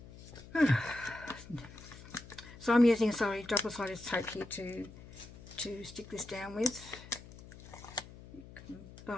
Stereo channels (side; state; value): left; noise; hum, 17 dB below the sound